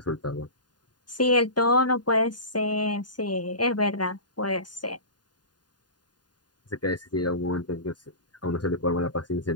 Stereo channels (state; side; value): late; right; 0.70 ms